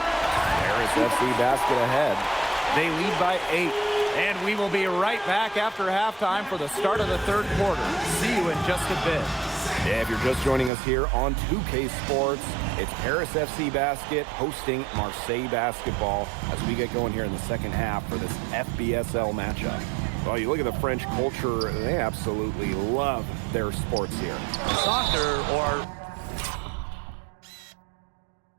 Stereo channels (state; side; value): drops out; left; at 10.7 s